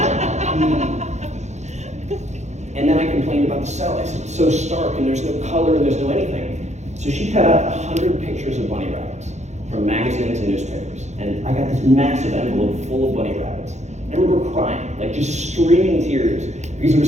And then I complained about the cell. I said, it's so stark, and there's no color, and there's no anything. So she cut out 100 pictures of bunny rabbits from magazines and newspapers. And I got this massive envelope full of bunny rabbits. And I remember crying, like just streaming tears, because there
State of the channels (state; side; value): late; left; 0.33 ms